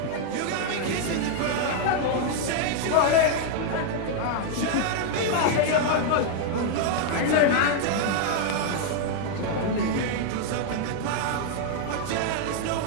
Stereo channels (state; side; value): different; both; correlation 0.00